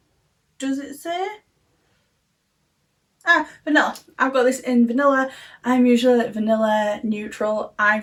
Does it say? Ah, vanilla. I've got this in vanilla. I'm usually like vanilla, neutral,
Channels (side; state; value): both; identical; correlation 1.00